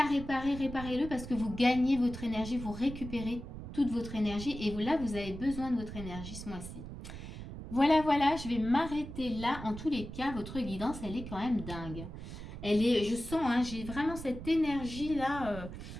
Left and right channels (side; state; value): right; noise; rumble, 10 dB below the sound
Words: réparer, réparez-le parce que vous gagnez votre énergie, vous récupérez toute votre énergie et là, vous avez besoin de votre énergie ce mois-ci. Voilà, voilà, je vais m'arrêter là. En tous les cas, votre guidance, elle est quand même dingue. Elle est, je sens, hein, j'ai vraiment cette énergie-là.